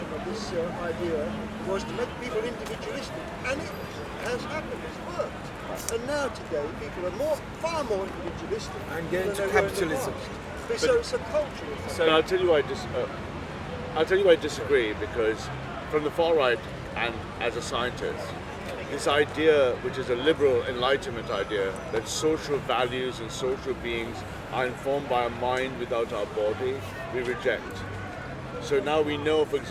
of this idea was to make people individualistic, and it has happened, it's worked. And now today, people are far more individualistic and get into than they were in the capitalism. past. So it's a cultural thing. So I'll tell you why I disagree, because from the far right and as a scientist, this idea, which is a liberal enlightenment idea, that social values and social beings are informed by a mind without our body, we reject. So now we know, for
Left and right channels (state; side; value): identical; both; correlation 1.00